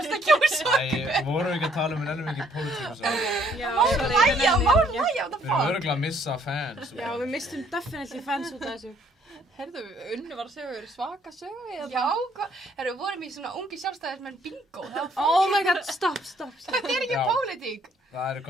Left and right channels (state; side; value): normal; both; correlation 0.65